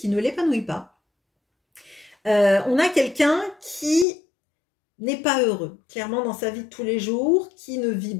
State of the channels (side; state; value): right; drops out; at 4.0 s